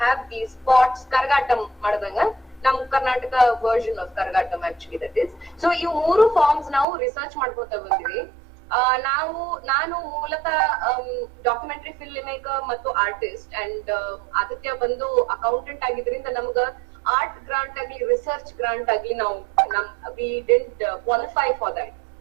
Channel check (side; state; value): left; drops out; at 6.9 s